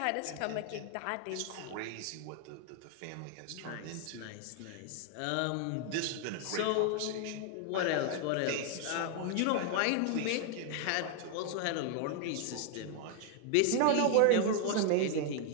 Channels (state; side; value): different; both; correlation 0.00